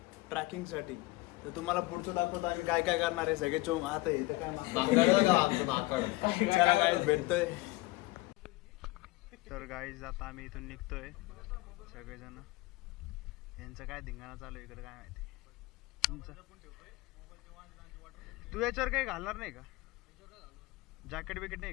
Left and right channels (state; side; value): quieter; right; 20.7 dB